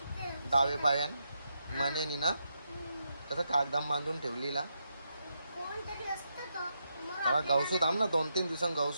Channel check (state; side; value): inverted; both; correlation -0.82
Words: डावे पायान मनेनी ना. कसं कागदाम बांधून ठेवलीला. कोणतरी असतं तो. मग तेव्हा आपल्याला- गवसू थांब ना. 2-3 दिवसांनी